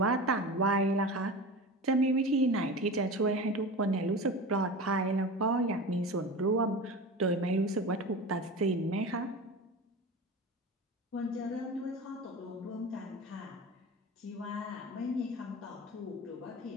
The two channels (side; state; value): both; normal; correlation 0.31